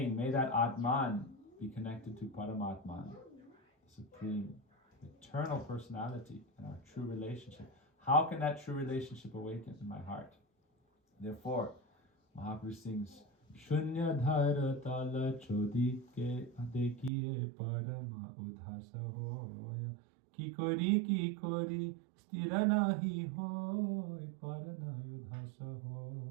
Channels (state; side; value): drops out; left; at 17.1 s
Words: may that Atman be connected to Paramatman, the Supreme, eternal personality, and our true relationship. How can that true relationship awaken in my heart? Therefore, Mahaprabhu sings, Shunya dhara tala chodi ke adekiye parama udhasa hoya ki kori stira nahi hoy parana udhasa hoy.